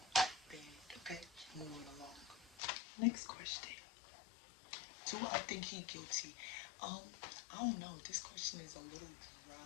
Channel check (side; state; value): right; drops out; at 2.6 s